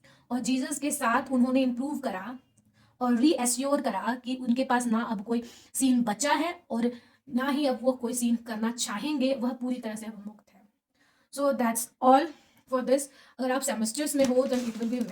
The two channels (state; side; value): identical; both; correlation 1.00